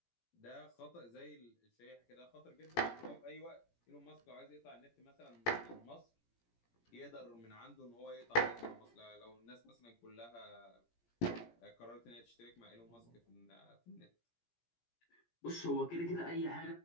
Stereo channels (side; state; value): right; late; 17 ms